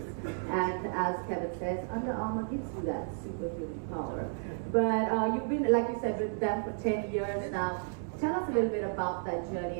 And as Kevin says, Under Armour gives you that superhuman power. But you've been, like you said, with them for 10 years now. Tell us a little bit about that journey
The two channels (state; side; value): silent; left; digital silence